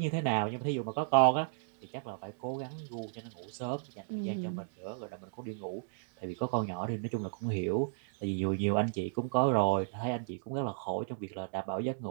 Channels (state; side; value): silent; left; digital silence